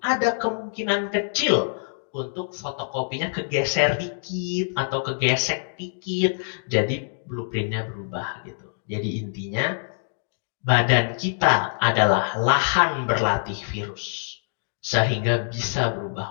ada kemungkinan kecil untuk fotokopinya kegeser dikit atau kegesek dikit. Jadi blueprintnya berubah gitu. Jadi intinya badan kita adalah lahan berlatih virus sehingga bisa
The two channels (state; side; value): silent; right; digital silence